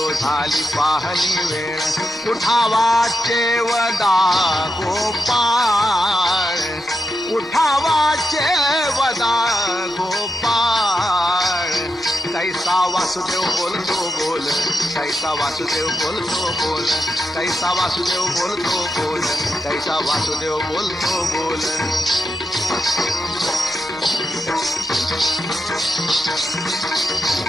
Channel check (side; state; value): both; normal; correlation 0.86